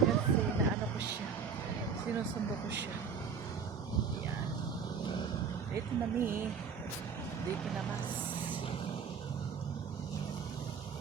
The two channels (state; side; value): quieter; left; 6.3 dB